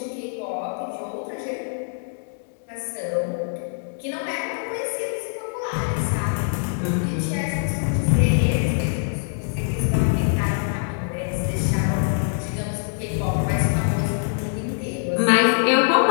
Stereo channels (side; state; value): right; silent; 63 dB below the other